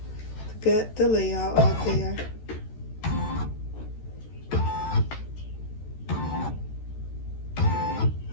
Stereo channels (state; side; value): late; right; 13 ms